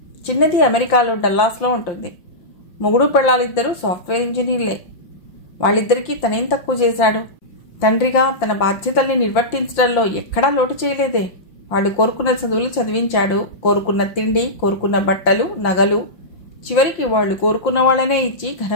చిన్నది అమెరికాలో డల్లాస్లో ఉంటుంది. మొగుడు పెళ్ళాలిద్దరూ సాఫ్ట్వేర్ ఇంజనీర్లే. వాళ్ళిద్దరికీ తనేం తక్కువ చేశాడు? తండ్రిగా తన బాధ్యతల్ని నిర్వర్తించడంలో ఎక్కడా లోటు చేయలేదే. వాళ్ళు కోరుకున్న చదువులు చదివించాడు. కోరుకున్న తిండి, కోరుకున్న బట్టలు, నగలు, చివరికి వాళ్ళు కోరుకున్న వాళ్ళనే ఇచ్చి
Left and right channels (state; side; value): late; right; 5.8 ms